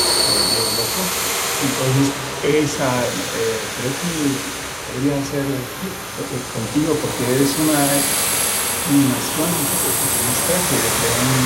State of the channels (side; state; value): both; identical; correlation 1.00